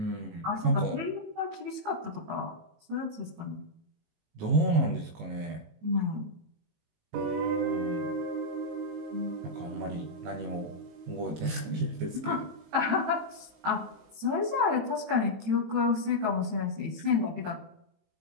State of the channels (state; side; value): late; left; 19 ms